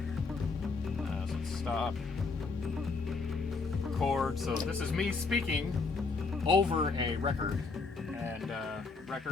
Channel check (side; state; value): right; quieter; 4.2 dB